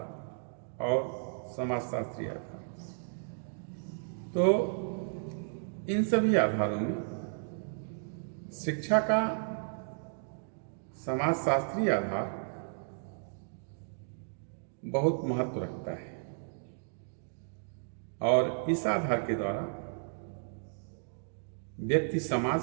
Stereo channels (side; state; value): left; silent; digital silence